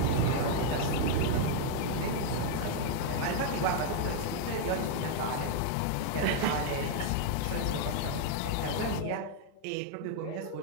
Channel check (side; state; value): both; different; correlation 0.00